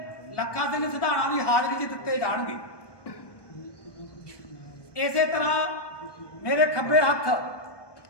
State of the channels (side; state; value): right; late; 1.2 ms